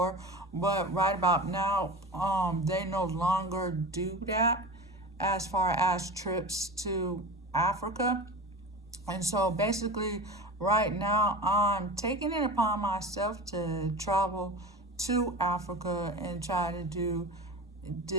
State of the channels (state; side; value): normal; both; correlation 0.32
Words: but right about now, they no longer do that as far as trips to Africa. And so basically, right now, I'm taking it upon myself to travel to Africa and try to do